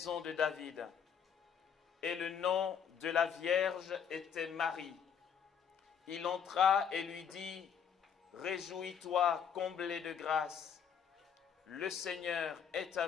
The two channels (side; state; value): right; quieter; 7.6 dB